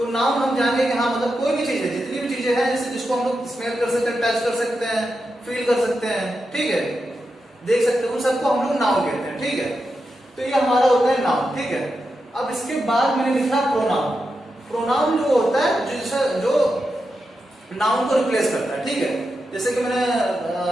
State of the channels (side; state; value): both; normal; correlation 0.88